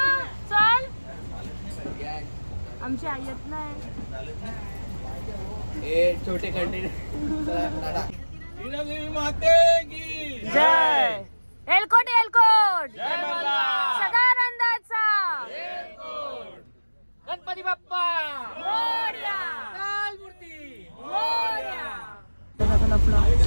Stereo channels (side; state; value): both; inverted; correlation -1.00